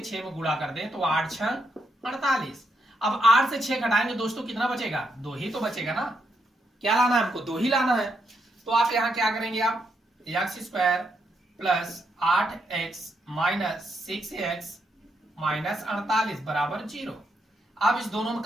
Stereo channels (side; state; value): both; normal; correlation 0.80